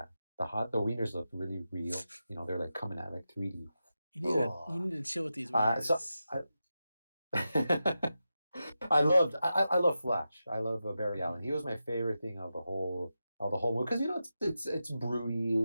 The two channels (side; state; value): both; inverted; correlation -0.90